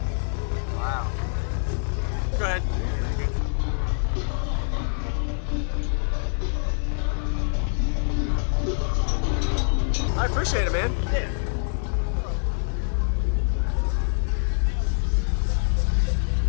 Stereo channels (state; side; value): silent; right; digital silence